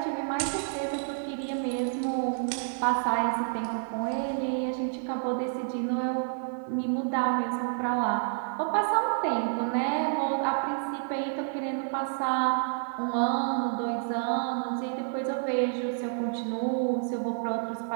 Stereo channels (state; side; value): silent; left; 58 dB below the other